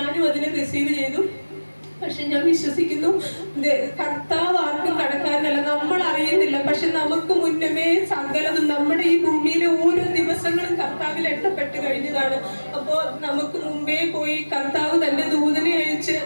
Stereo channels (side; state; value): both; inverted; correlation -1.00